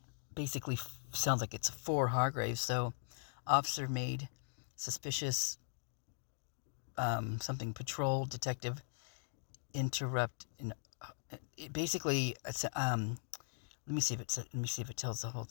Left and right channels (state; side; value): silent; right; digital silence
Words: Basically, sounds like it's for Hargraves. So, officer made suspicious something patrol detective interrupt. Basically, let me see if it tells the whole